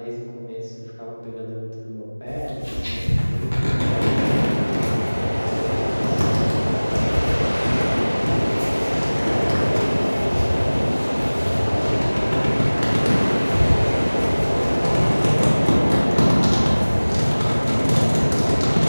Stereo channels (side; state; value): both; inverted; correlation -1.00